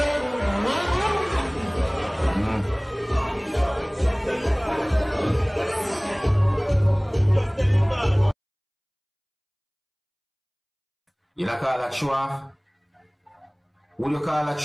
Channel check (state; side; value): identical; both; correlation 1.00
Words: You don't call that show off? Would you call that